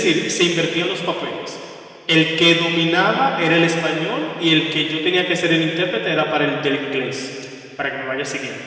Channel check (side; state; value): both; identical; correlation 1.00